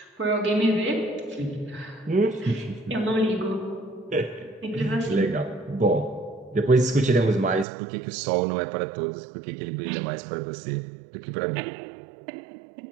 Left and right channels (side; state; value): left; drops out; at 7.7 s